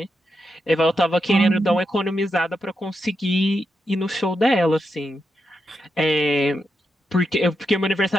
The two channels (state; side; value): normal; both; correlation 0.85